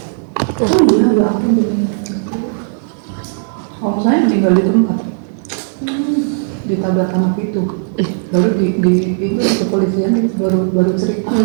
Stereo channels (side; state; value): left; silent; digital silence